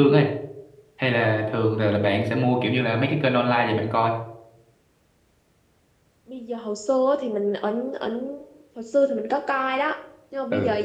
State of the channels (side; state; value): both; identical; correlation 1.00